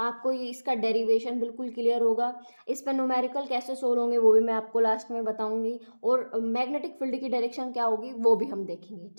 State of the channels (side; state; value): both; inverted; correlation -1.00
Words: इसका डेरिवेशन बिल्कुल क्लियर होगा। इस पर न्यूमेरिकल कैसे सोल्व होंगे वो भी मैं आपको लास्ट में बताऊंगी, और मैग्नेटिक फील्ड की डायरेक्शन क्या होगी वो भी हम देखेंगे।